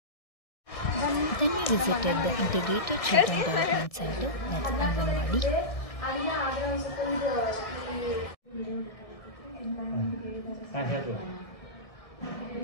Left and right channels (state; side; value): late; right; 1.6 ms